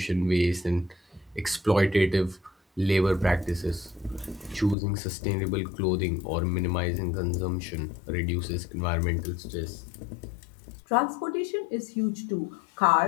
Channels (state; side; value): drops out; right; at 4.8 s